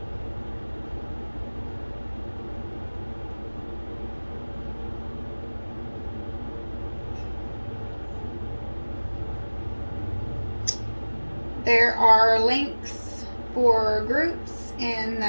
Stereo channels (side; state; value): both; inverted; correlation -1.00